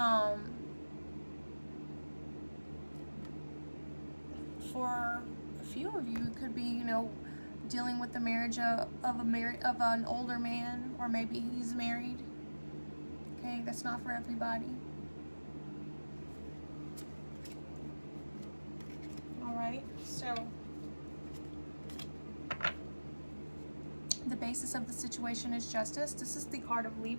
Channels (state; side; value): inverted; both; correlation -1.00